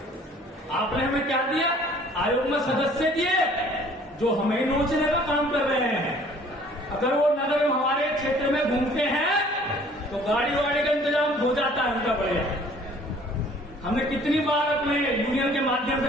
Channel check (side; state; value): both; normal; correlation 0.54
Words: आपने हमें क्या दिया? आयोग में सदस्य दिए जो हमें नोचने का काम कर रहे हैं। अगर वो नगर में हमारे क्षेत्र में घूमते हैं तो गाड़ी वाड़ी का इंतजाम हो जाता है उनका बढ़िया। हमने कितनी बार अपने यूनियन के माध्यम से